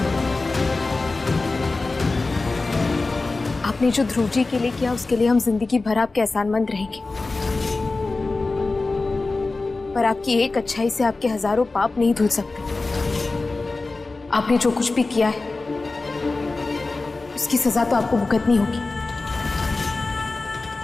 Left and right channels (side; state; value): right; quieter; 3.5 dB